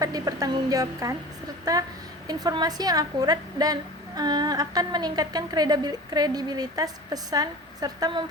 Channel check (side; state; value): both; normal; correlation 0.37